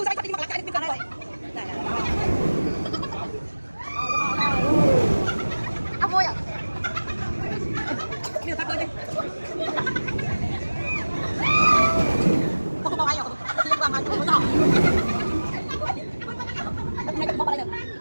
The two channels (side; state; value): both; inverted; correlation -1.00